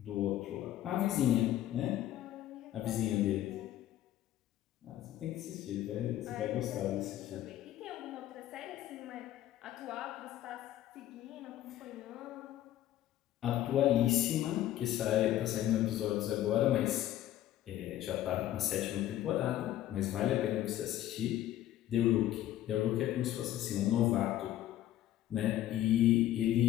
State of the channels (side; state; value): right; quieter; 13.1 dB